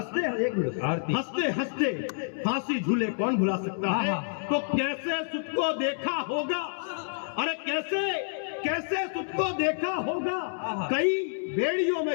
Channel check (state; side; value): silent; right; 59 dB below the other